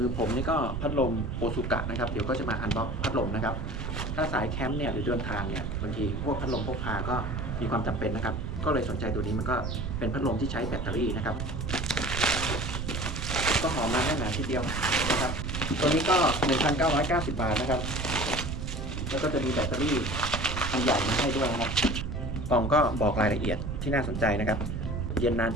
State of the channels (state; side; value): noise; right; rumble, 4 dB below the sound